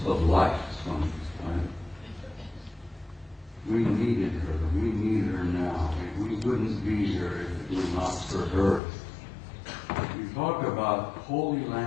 of life on this planet. We needed her. We need her now. And we wouldn't be here if it were not for her. We talk about Holy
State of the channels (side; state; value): right; drops out; at 8.8 s